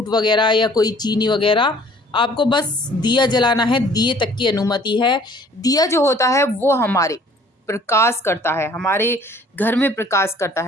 वगैरह या कोई चीनी वगैरह। आपको बस दिया जलाना है, दिए तक की अनुमति है। दिया जो होता है वो हमारे प्रकाश करता है, हमारे घर में प्रकाश करता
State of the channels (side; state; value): both; normal; correlation 0.55